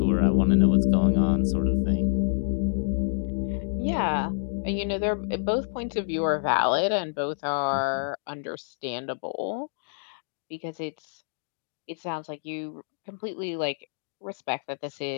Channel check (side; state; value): right; silent; digital silence